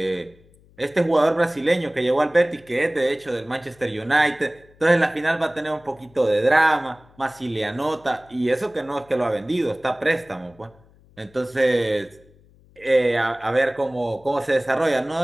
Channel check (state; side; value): noise; left; hum, 29 dB below the sound